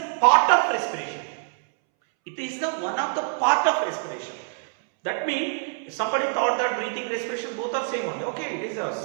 part of respiration. It is the one of the part of respiration. That means somebody thought that breathing, respiration both are same only. Okay, it is the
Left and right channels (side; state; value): left; silent; 62 dB below the other